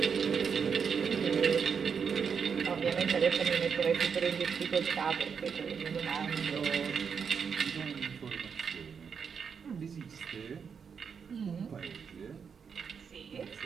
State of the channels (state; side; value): quieter; left; 6.4 dB